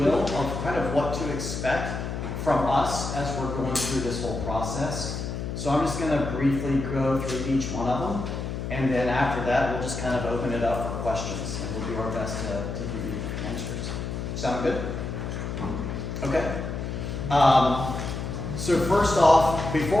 of kind of what to expect from us as we're going through this whole process. So I'm just going to briefly go through each one of them. And then after that, we'll just kind of open it up for questions, and we'll do our best to give you answers. Sound good? Okay. So first off,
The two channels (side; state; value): left; noise; hum, 5 dB below the sound